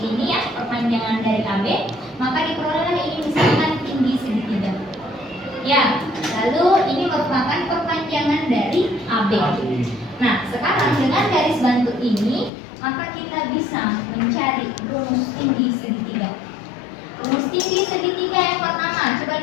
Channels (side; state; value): right; drops out; at 12.5 s